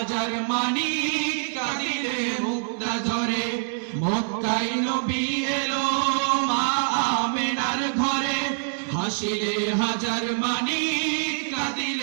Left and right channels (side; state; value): left; silent; 62 dB below the other